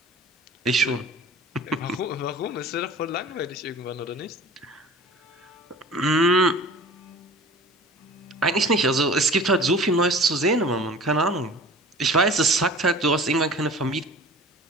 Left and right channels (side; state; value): both; normal; correlation 0.42